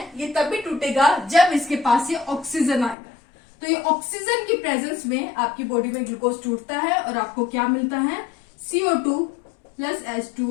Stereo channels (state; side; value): drops out; right; at 3.0 s